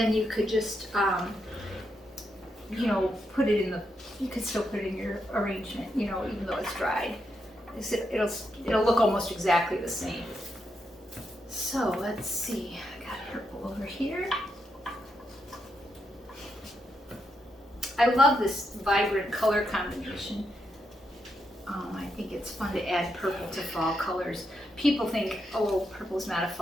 you could just, you know, put it in the, you could still put it in your arrangement, you know, even though it's dried. It'll look almost exactly the same. So let's see, I got purple over here. I love this vibrant color combination. I think it's fun to add purple to fall colors. People think, oh, purple's not a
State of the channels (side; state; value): both; normal; correlation 0.82